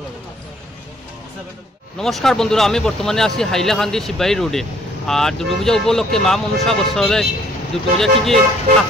নমস্কার বন্ধুরা, আমি বর্তমানে আছি হাইলাকান্দি শিববাড়ি রোডে। আর দুর্গাপূজা উপলক্ষে মা মনসা বস্ত্রালয়ে দুর্গাপূজা কী কী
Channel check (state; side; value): normal; both; correlation 0.61